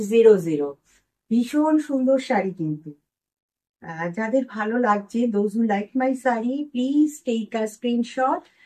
ভীষণ সুন্দর শাড়ি কিন্তু। যাদের ভালো লাগছে, those who like my saree, please take a screenshot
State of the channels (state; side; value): identical; both; correlation 1.00